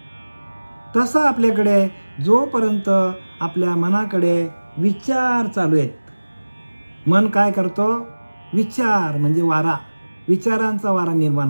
तसं आपल्याकडे जोपर्यंत आपल्या मनाकडे विचार चालू आहेत, मन काय करतो? विचार म्हणजे वारा, विचारांचा वारा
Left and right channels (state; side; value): inverted; both; correlation -1.00